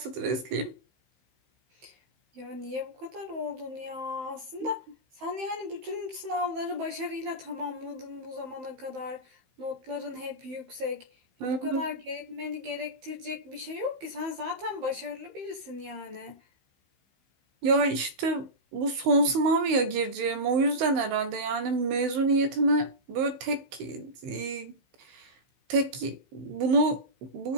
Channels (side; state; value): left; late; 15 ms